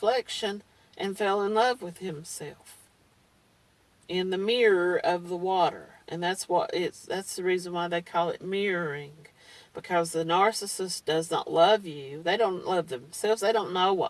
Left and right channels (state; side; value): identical; both; correlation 1.00